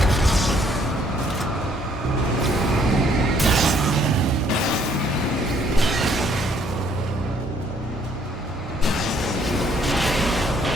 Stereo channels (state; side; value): normal; both; correlation 0.65